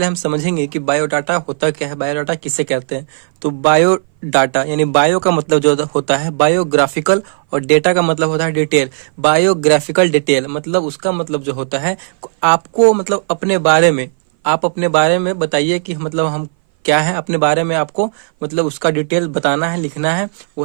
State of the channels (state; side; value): silent; left; 60 dB below the other